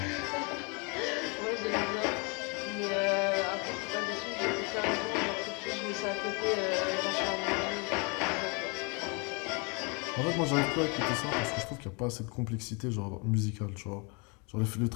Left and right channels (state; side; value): quieter; right; 32.2 dB